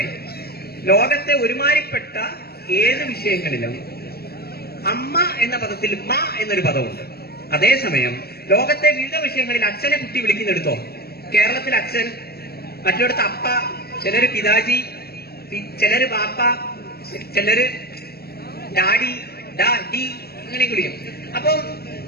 ലോകത്തെ ഒരുമാതിരിപ്പെട്ട ഏത് വിഷയങ്ങളിലും അമ്മ എന്ന പദത്തിൽ മ എന്നൊരു പദമുണ്ട്. അതേസമയം ലോകത്തെ വിവിധ വിഷയങ്ങളിൽ അച്ഛനെ കുട്ടി വിളിക്കുന്നെടുത്തോ. കേരളത്തിൽ അച്ഛൻ, മറ്റിടത്ത് അപ്പ, ചിലര് പിതാജി, ചിലര് ബാപ്പ, ചിലര് ഡാഡി, ഡി അങ്ങനെ വിളിക്കും. അപ്പം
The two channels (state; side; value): late; right; 0.46 ms